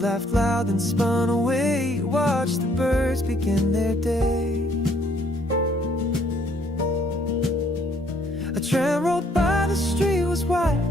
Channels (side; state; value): both; normal; correlation 0.65